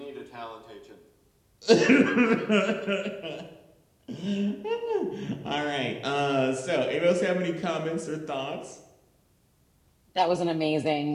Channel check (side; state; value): both; identical; correlation 1.00